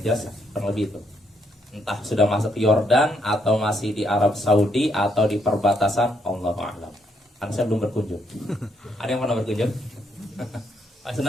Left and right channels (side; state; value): both; normal; correlation 0.73